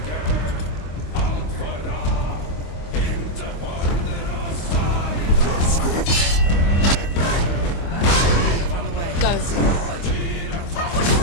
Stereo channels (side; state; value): right; late; 25 ms